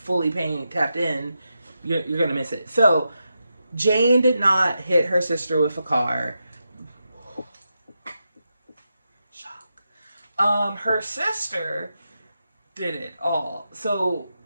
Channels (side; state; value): both; inverted; correlation -0.87